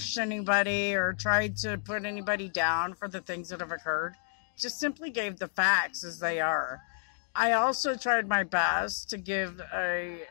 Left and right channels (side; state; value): right; silent; digital silence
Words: anybody or tried to put anybody down for the things that have occurred. Just simply gave the facts as they are. I also tried my best to give a